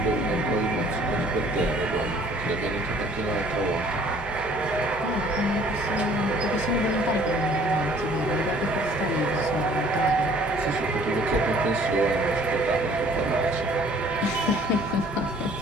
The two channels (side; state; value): both; normal; correlation 0.56